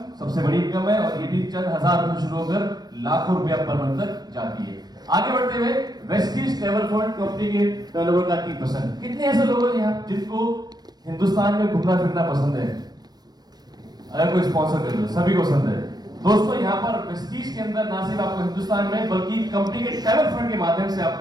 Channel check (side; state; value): left; late; 0.19 ms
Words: सबसे बड़ी इनकम है और ये भी चंद हजार रुपए शुरू होकर लाखों रुपया पर मंथ तक जाती है। आगे बढ़ते हुए वेस्टीज ट्रैवल फंड, कंपनी के टर्नओवर का 3%। कितने ऐसे लोग हैं यहाँ जिनको हिंदुस्तान में घूमना फिरना पसंद है? अगर कोई स्पॉन्सर कर लो, सभी को पसंद है। दोस्तों यहाँ पर वेस्टीज के अंदर ना सिर्फ आपको हिंदुस्तान में बल्कि कंपनी के ट्रैवल फंड के माध्यम से